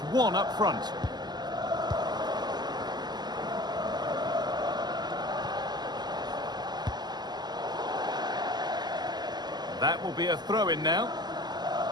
1 up front. That will be a throw-in now.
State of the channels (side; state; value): left; late; 0.20 ms